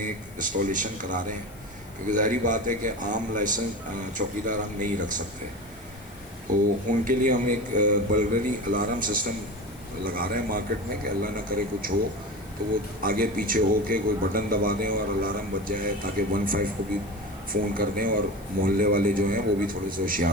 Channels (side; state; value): left; noise; hiss, 25 dB below the sound